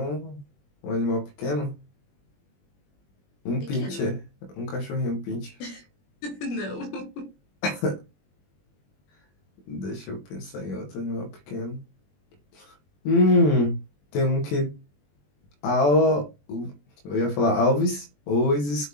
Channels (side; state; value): right; late; 21 ms